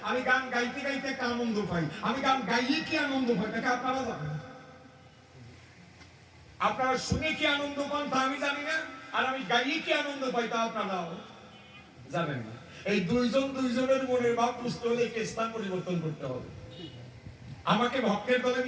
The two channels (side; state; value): both; identical; correlation 1.00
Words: আমি গান গাইতে গাইতে একটা আনন্দ পাই। আমি গান গাইয়ে কি আনন্দ পাই তাকে আপনারা জানেন? আপনারা শুনে কি আনন্দ পান তা আমি জানি না, আর আমি গাইয়ে কি আনন্দ পাই তা আপনারাও জানেন না। এই দুইজনের মনের ভাব বুঝতে হলে স্থান পরিবর্তন করতে হবে। আমাকে ভক্তের দলে